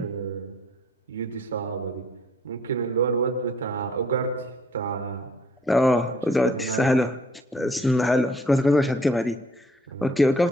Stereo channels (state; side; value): normal; both; correlation 0.61